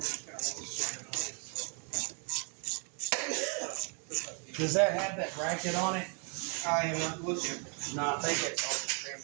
Does that have that bracket on it? I am not looking. No, I think it's all just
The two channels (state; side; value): quieter; left; 36.5 dB